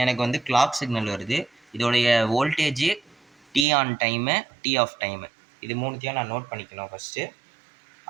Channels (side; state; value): left; drops out; at 3.7 s